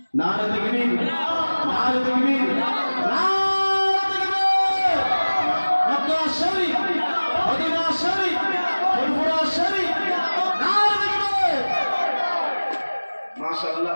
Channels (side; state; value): both; inverted; correlation -1.00